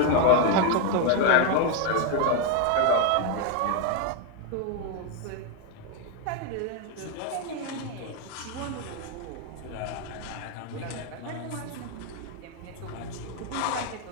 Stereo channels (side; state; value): both; different; correlation 0.01